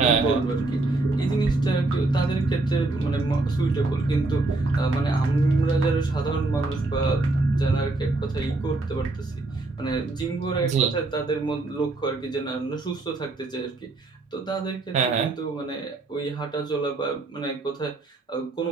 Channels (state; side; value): quieter; left; 3.1 dB